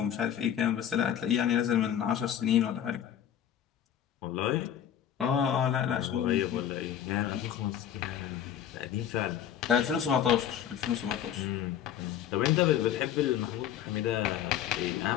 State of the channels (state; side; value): quieter; right; 9.9 dB